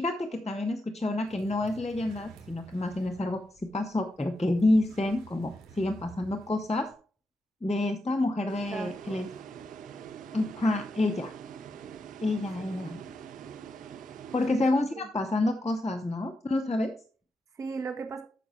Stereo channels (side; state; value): both; normal; correlation 0.86